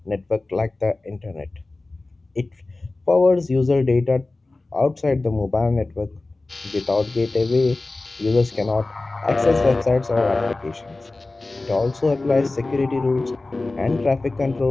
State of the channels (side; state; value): right; quieter; 3.2 dB